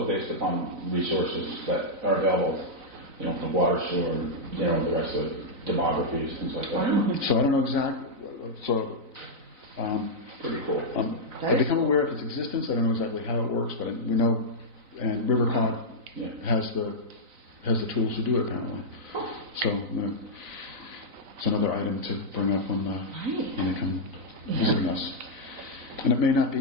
based upon resources that are available, the water, sewer, the rest of the demographies, things like that. So I don't know exactly. So Pretty cool. I become aware of its existence. I don't know exactly how it works, but we know, and Rivercog Yeah. has the tools to do it apparently. So it's another item to bring up when they come visiting us. And it may not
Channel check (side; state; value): left; late; 4.0 ms